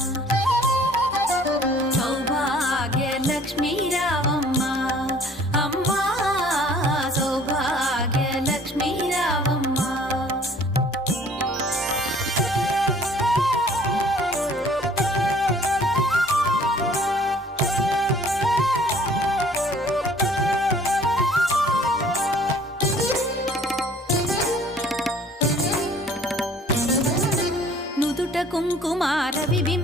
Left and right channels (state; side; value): normal; both; correlation 0.54